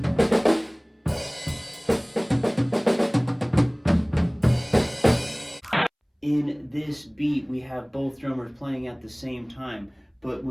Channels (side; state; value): both; identical; correlation 1.00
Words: In this beat, we have both drummers playing at the same time, but